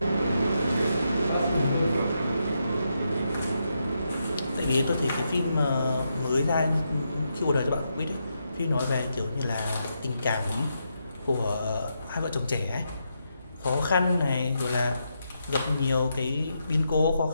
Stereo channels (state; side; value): inverted; both; correlation -0.82